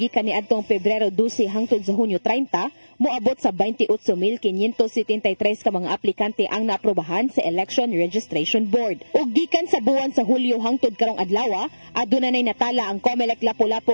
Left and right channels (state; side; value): inverted; both; correlation -1.00